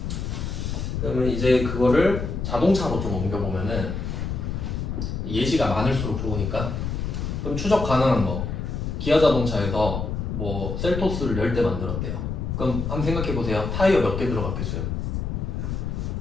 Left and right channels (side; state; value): left; noise; rumble, 3 dB below the sound